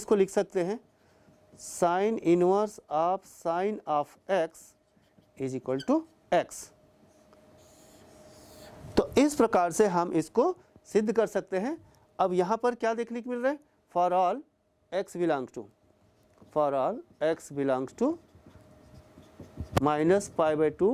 लिख सकते हैं sine inverse of sine of x is equal to x। तो इस प्रकार से हम इसको सिद्ध कर सकते हैं। अब यहाँ पर क्या देखने को मिल रहा है, for all x belongs to, for all x belongs to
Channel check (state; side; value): identical; both; correlation 1.00